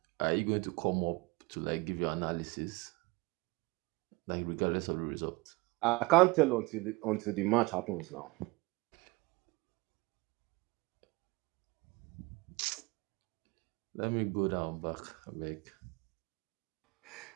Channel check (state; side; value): quieter; left; 24.0 dB